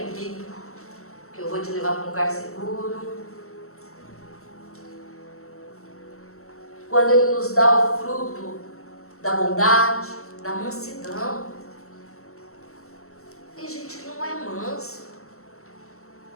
comigo, que eu vou te levar para um lugar seguro. Quando Ele nos dá o fruto da bondade, da mansidão. Tem gente que não é manso,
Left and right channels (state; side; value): late; right; 0.63 ms